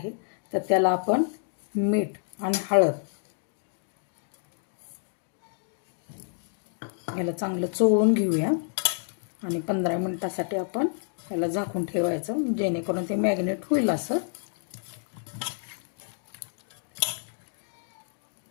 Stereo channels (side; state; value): right; silent; digital silence